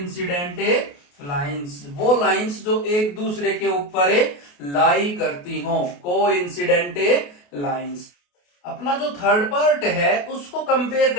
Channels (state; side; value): late; right; 28 ms